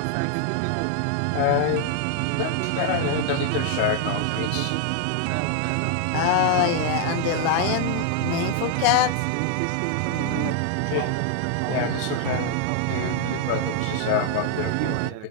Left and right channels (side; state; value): both; different; correlation 0.00